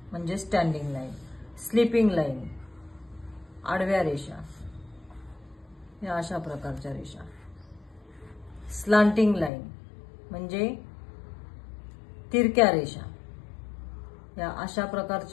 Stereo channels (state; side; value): drops out; right; at 9.5 s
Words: म्हणजे स्टँडिंग लाईन, स्लीपिंग लाईन आडव्या रेषा, या अशा प्रकारच्या रेषा, स्लांटिंग लाईन म्हणजे तिरक्या रेषा, या अशा